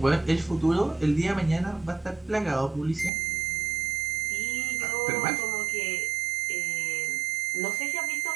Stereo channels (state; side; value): drops out; left; at 3.1 s